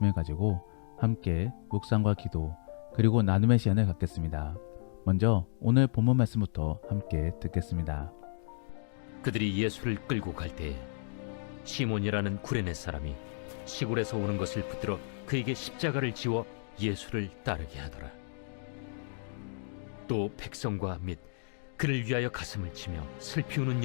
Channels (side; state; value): right; silent; digital silence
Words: 가지고 함께 묵상과 기도 그리고 나눔의 시간을 갖겠습니다. 먼저 오늘 본문 말씀부터 함께 듣겠습니다. 그들이 예수를 끌고 갈 때에 시몬이라는 구레네 사람이 시골에서 오는 것을 붙들어 그에게 십자가를 지워 예수를 따르게 하더라. 또 백성과 및 그를 위하여 가슴을 치며 슬피 우는